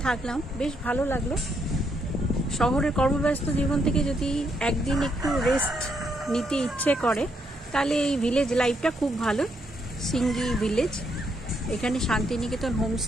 থাকলাম, বেশ ভালো লাগলো। শহরের কর্মব্যস্ত জীবন থেকে যদি একদিন একটু রেস্ট নিতে ইচ্ছে করে তাহলে এই ভিলেজ লাইফটা খুব ভালো। সিঙ্গি ভিলেজ, এখানে শান্তিনিকেতন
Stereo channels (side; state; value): both; normal; correlation 0.76